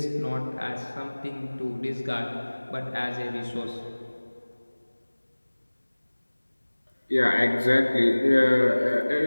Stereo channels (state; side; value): inverted; both; correlation -1.00